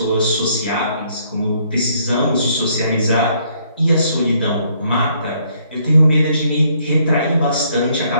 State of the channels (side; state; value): both; inverted; correlation -0.68